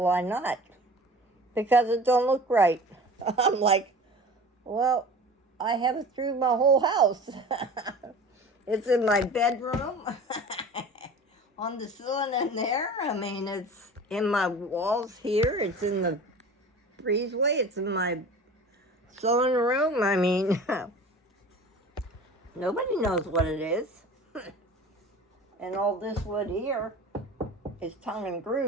why not? Because it don't look right. I'm like, well, I have it through my whole house. It's in my bedroom, on the ceiling in there. I mean, it's in my walls here. It's in the breezeway. It's in my sewing room. I mean, nobody knows what it is. And all this wood here is tongue and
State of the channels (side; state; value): both; normal; correlation 0.39